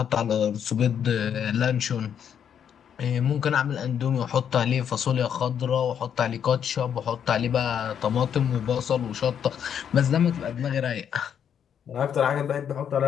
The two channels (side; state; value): right; quieter; 8.5 dB